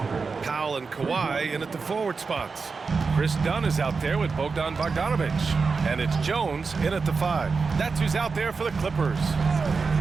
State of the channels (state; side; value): quieter; left; 4.7 dB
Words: Powell and Kawhi in at the forward spots. Chris Dunn is out there with Bogdan Bogdanovich. And it's Jones in at the 5. That's who's out there for the Clippers.